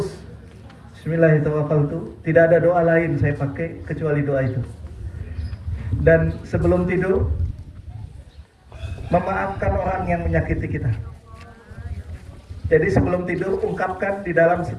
Bismillahirrahmanirrahim. Tidak ada doa lain saya pakai kecuali doa itu. Dan sebelum tidur memaafkan orang yang menyakiti kita. Jadi sebelum tidur ungkapkan di dalam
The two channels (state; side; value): identical; both; correlation 1.00